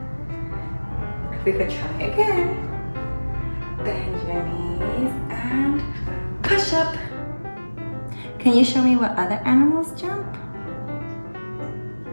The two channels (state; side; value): inverted; both; correlation -1.00